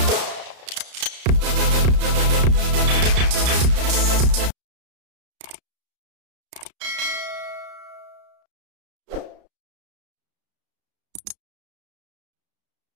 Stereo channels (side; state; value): left; late; 33 ms